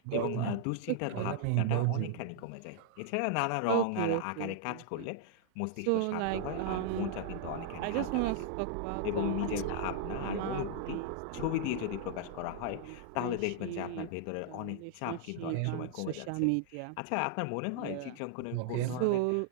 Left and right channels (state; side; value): different; both; correlation -0.01